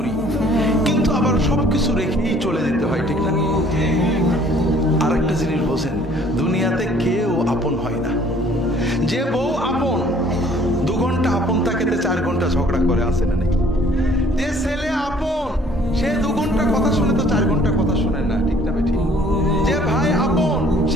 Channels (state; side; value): normal; both; correlation 0.57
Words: কিন্তু আবার সবকিছু রেখেই চলে যেতে হয়, ঠিক না? আরেকটা জিনিস বোঝেন, দুনিয়াতে কেউ আপন হয় না। যে বউ আপন, 2 ঘন্টা আপন থাকেতে 4 ঘন্টা ঝগড়া করে, আসে না নেই? যে ছেলে আপন, সে 2 ঘন্টা কথা শুনে তো 4 ঘন্টা কথা শুনে না, ঠিক না বেঠিক? যে ভাই আপন,